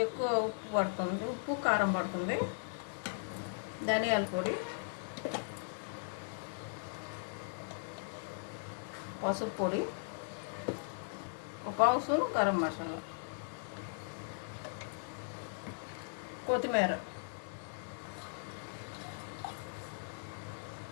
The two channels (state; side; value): silent; right; digital silence